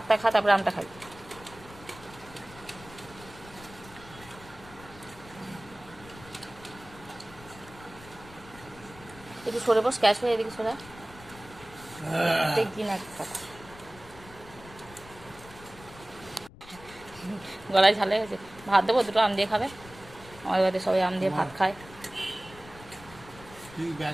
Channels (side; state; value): left; noise; rumble, 19 dB below the sound